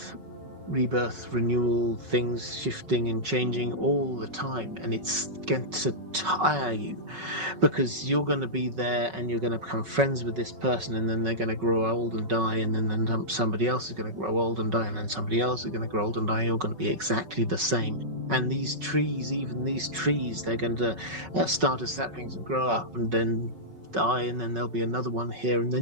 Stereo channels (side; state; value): left; late; 5.4 ms